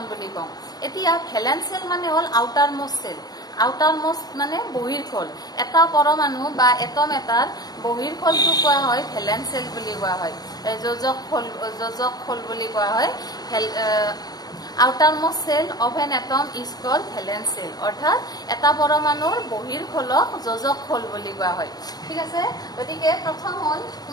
বুলি কওঁ এতিয়া ভ্যালেন্স সেল মানে হল আউটাৰ মোস্ট মানে বহিৰ্খোল এটা পৰমাণু বা এটম এটাৰ বহিৰ্খোলটো কোৱা হয় ভ্যালেন্স সেল বুলি কোৱা হয় যোজক খোল বুলি কোৱা হয় outermost cell of an atom is called valence cell অৰ্থাৎ এটা পৰমাণুৰ বহিৰ্খোলক যোজক খোল বুলি কোৱা হয় ঠিক আছে গতিকে প্ৰথম হল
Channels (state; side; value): late; right; 0.19 ms